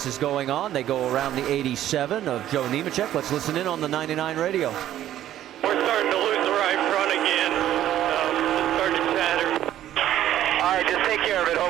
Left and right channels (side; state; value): left; quieter; 12.3 dB